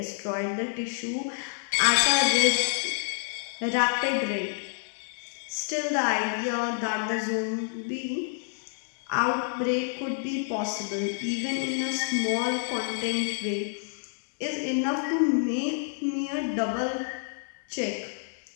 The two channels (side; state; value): right; silent; digital silence